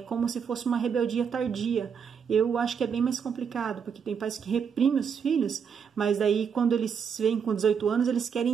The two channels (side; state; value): left; quieter; 6.9 dB